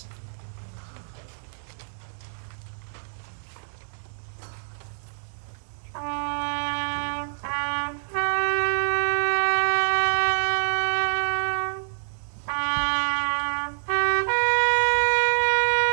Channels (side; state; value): left; silent; digital silence